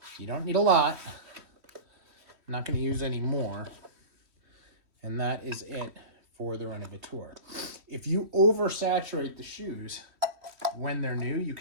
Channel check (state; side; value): late; left; 3.1 ms